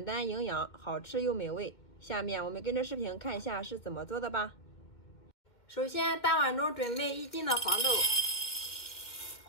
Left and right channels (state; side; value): late; right; 2.1 ms